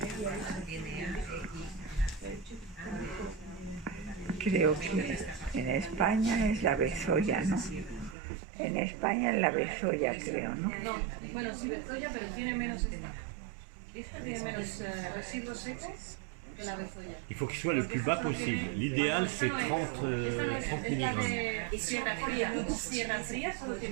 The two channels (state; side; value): drops out; left; at 8.2 s